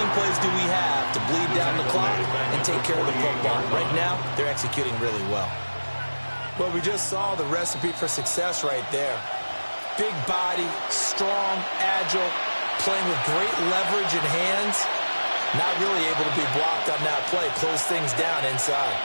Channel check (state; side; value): inverted; both; correlation -1.00